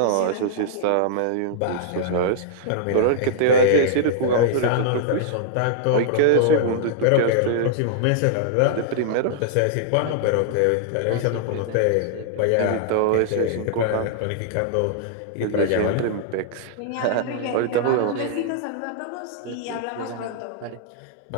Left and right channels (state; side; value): different; both; correlation -0.01